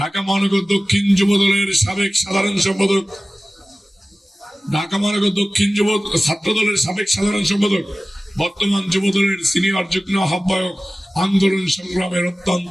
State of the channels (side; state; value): both; normal; correlation 0.97